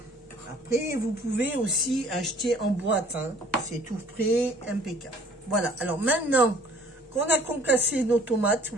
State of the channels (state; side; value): normal; both; correlation 0.55